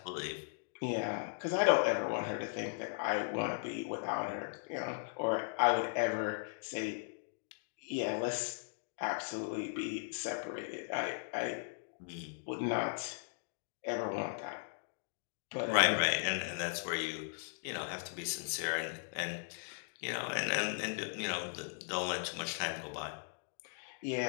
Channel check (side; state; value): right; silent; digital silence